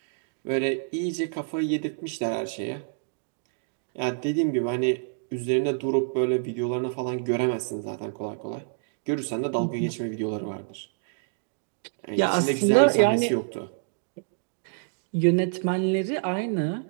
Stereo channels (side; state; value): left; silent; digital silence